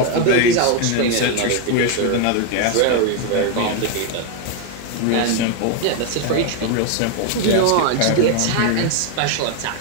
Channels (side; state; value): both; different; correlation 0.01